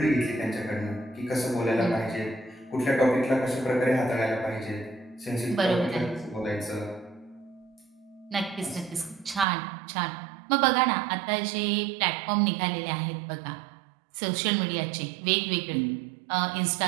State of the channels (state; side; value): drops out; left; at 9.5 s